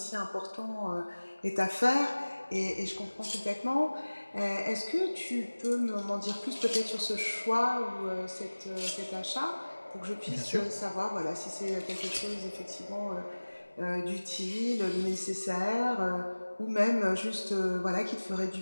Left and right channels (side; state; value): both; inverted; correlation -1.00